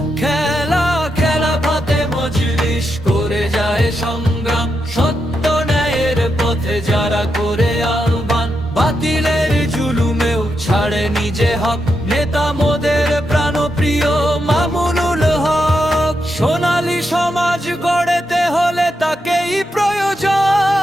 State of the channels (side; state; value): both; normal; correlation 0.84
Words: খেলাফতে মজলিস করে যায় সংগ্রাম, সত্য ন্যায়ের পথে যারা করে আহ্বান। বাতিলের জুলুমেও ছাড়ে নিজে হক, নেতা মোদের প্রাণপ্রিয় মামুনুল হক। সোনালী সমাজ গড়তে হলে তাকেই প্রয়োজন।